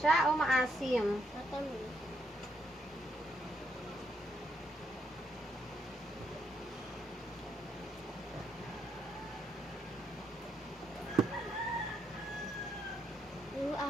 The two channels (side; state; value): both; normal; correlation 0.75